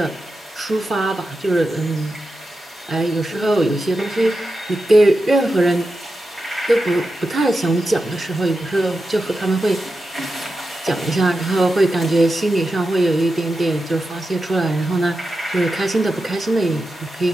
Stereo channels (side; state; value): both; normal; correlation 0.90